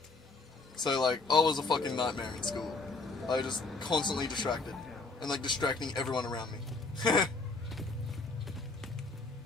So, like, I was a fucking nightmare in school. I was just constantly distracted, and, like, distracting everyone around me.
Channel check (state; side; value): quieter; right; 3.7 dB